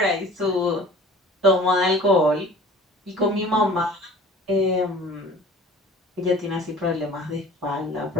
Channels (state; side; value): normal; both; correlation 0.45